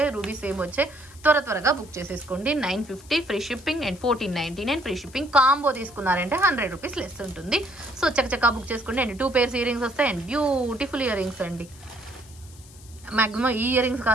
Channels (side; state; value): left; noise; hiss, 22 dB below the sound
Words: రూబీ సేమ్ వచ్చాయి. త్వరగా బుక్ చేసేసుకోండి. 950 free shipping and 1499 free shipping. Combo తీసుకున్నారంటే 100 రూపీస్ లెస్ ఉంటుంది. సో చక్కచక్క బుక్ చేసుకోండి. అండ్ 2 pairs ఇయర్ రింగ్స్ వస్తాయి అండ్ బ్యూటిఫుల్ ఇయర్ రింగ్స్ అండి. మ్యాక్సిమం ఈ ఇయర్ రింగ్స్